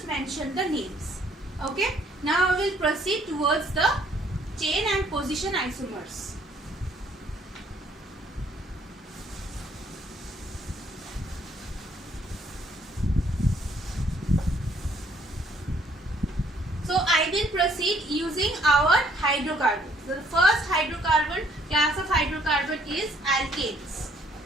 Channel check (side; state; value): both; normal; correlation 0.64